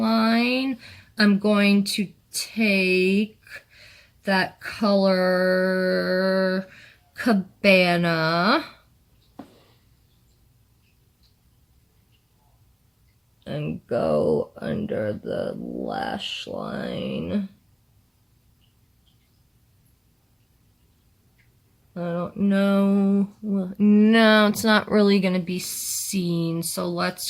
I'm going to take that color Cabana and go under the lash line. I don't know. Well, no, it's not really going to be seen. So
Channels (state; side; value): identical; both; correlation 1.00